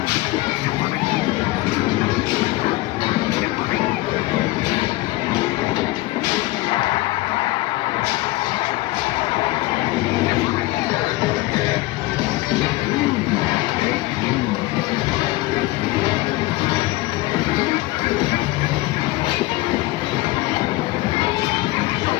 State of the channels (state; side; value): quieter; right; 19.1 dB